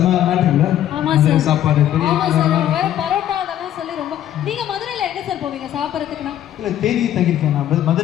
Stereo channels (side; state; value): right; quieter; 11.6 dB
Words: மேட்ரு இல்லை? சாப்பாடு பரோட்டா அதெல்லாம் சொல்லி ரொம்ப. நீங்க மதுரையில எங்க சார் போவீங்க சாப்பிட்றதுக்குன்னா? இல்லை தேனியில் தங்கியிருக்கேன். நான்